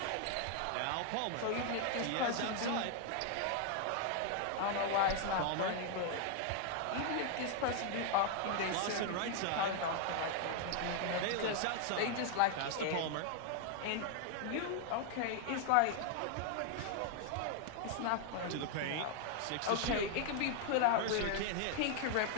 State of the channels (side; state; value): both; different; correlation 0.00